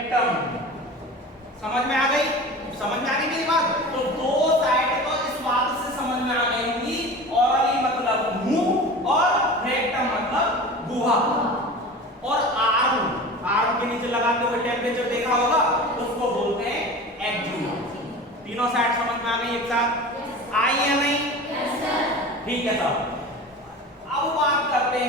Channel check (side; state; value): both; normal; correlation 0.35